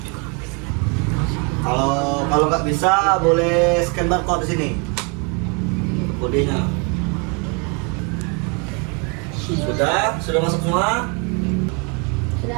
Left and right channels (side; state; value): left; quieter; 33.6 dB